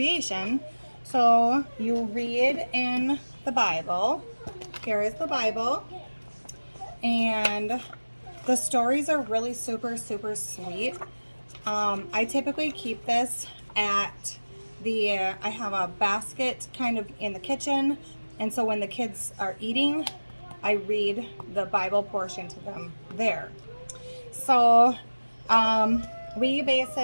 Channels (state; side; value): inverted; both; correlation -1.00